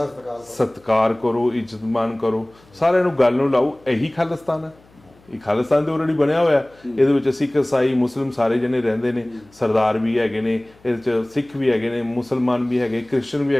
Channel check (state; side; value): noise; left; hum, 29 dB below the sound